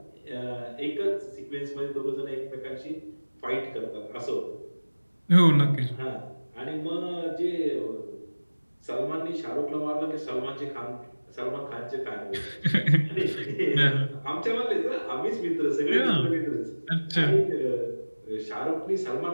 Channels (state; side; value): inverted; both; correlation -1.00